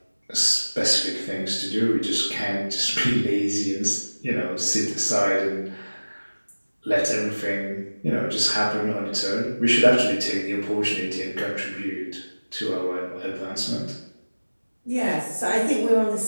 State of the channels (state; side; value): inverted; both; correlation -1.00